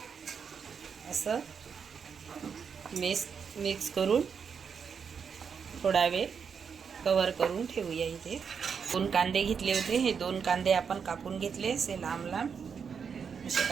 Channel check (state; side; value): quieter; left; 6.5 dB